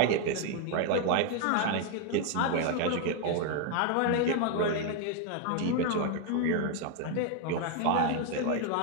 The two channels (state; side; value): different; both; correlation 0.01